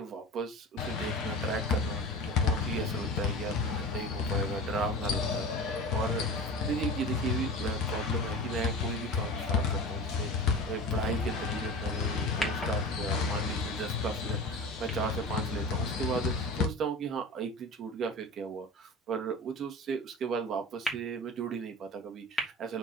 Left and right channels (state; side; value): normal; both; correlation 0.33